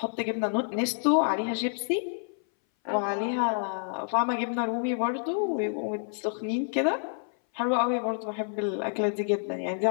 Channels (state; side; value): silent; right; 59 dB below the other